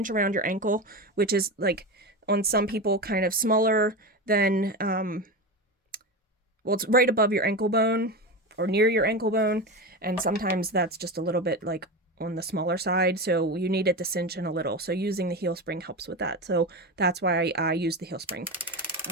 around your ankle, which is like on some people kind of smaller than, well, it's right above your ankle bone or near your ankle bone. And sometimes that's just a little bit like on the smaller side. So you need it to cinch in a little. So using the heel spring helps with that. So that's why I use the heel spring.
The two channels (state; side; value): normal; both; correlation 0.21